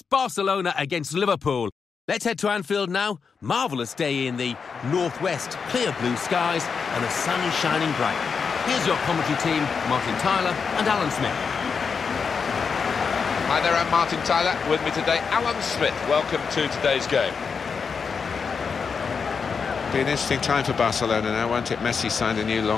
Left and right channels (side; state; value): right; quieter; 5.7 dB